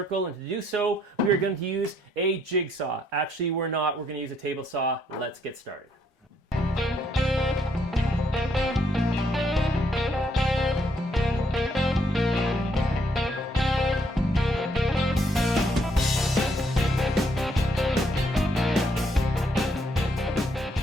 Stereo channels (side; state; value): both; normal; correlation 0.71